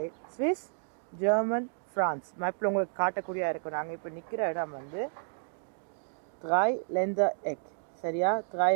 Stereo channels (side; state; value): left; silent; digital silence